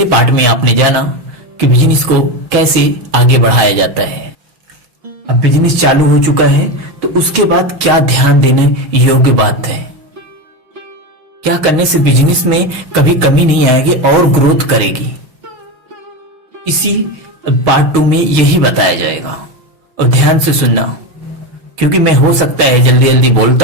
पार्ट में आपने जाना कि बिजनेस को कैसे आगे बढ़ाया जाता है। अब बिजनेस चालू हो चुका है तो उसके बाद क्या ध्यान देने योग्य बात है, क्या करने से बिजनेस में कभी कमी नहीं आएगी और ग्रोथ करेगी, इसी पार्ट 2 में यही बताया जाएगा। और ध्यान से सुनना, क्योंकि मैं हो सकता है जल्दी जल्दी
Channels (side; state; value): left; late; 6.3 ms